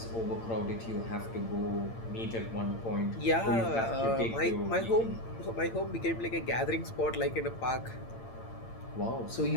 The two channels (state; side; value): late; right; 8.8 ms